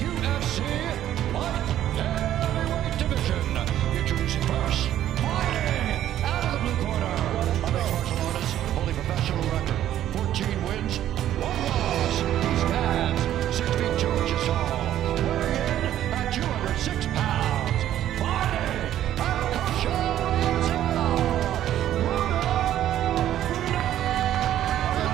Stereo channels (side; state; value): left; quieter; 12.0 dB